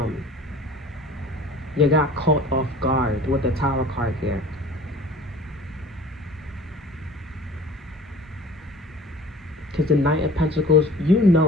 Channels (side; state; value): both; normal; correlation 0.45